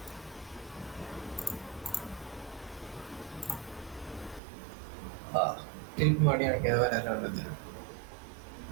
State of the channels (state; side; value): drops out; left; at 4.4 s